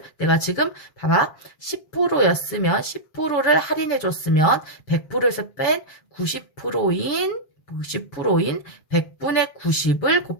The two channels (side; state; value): right; late; 7.4 ms